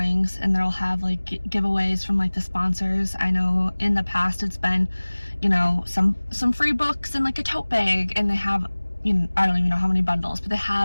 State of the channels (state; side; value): inverted; both; correlation -1.00